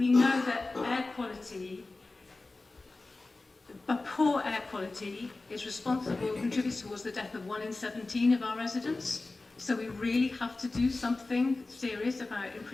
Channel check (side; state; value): right; quieter; 3.3 dB